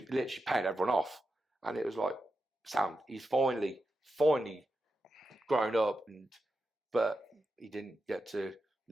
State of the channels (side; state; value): both; normal; correlation 0.89